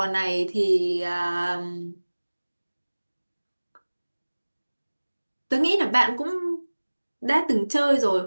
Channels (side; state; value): both; inverted; correlation -1.00